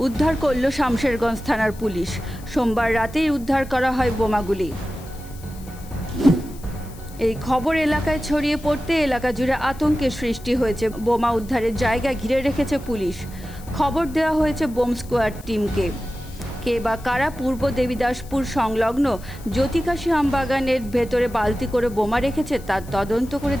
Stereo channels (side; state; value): left; noise; hiss, 21 dB below the sound